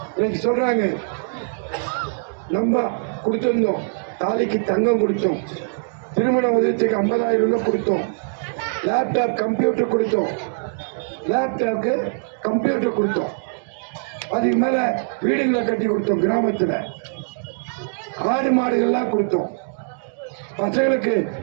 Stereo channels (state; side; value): silent; left; digital silence